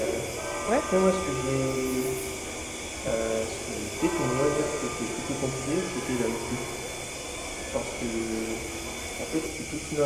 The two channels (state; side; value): identical; both; correlation 1.00